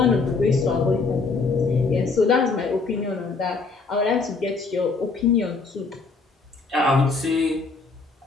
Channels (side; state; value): right; quieter; 4.2 dB